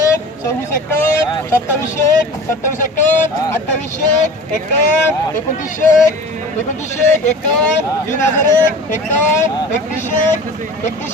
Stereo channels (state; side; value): normal; both; correlation 0.38